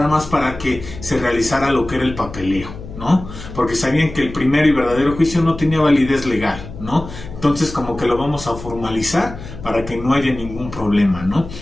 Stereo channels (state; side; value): noise; left; hum, 13 dB below the sound